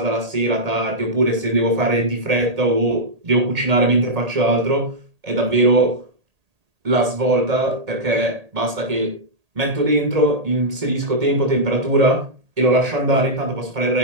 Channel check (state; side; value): late; left; 1.8 ms